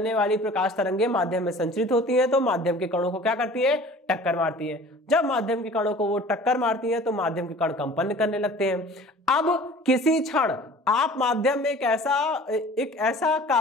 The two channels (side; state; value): both; normal; correlation 0.45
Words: वाली प्रकाश तरंगे माध्यम में संचरित होती हैं, तो माध्यम के कणों को क्या करती है, टक्कर मारती है। जब माध्यम के कणों को वो टक्कर मारती है तो माध्यम के कण कंपन करने लगते हैं। अब किसी क्षण आप माध्यम में एक ऐसा